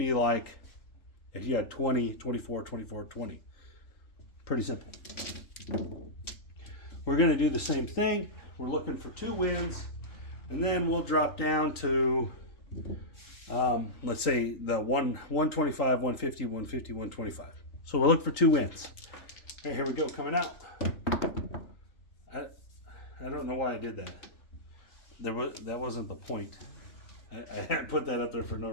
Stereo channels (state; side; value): late; right; 3.8 ms